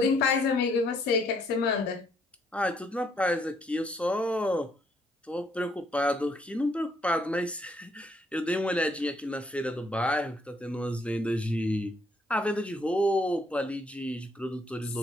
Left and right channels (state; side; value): normal; both; correlation 0.69